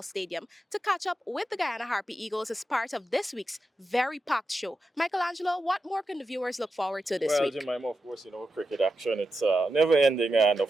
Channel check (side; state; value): both; normal; correlation 0.89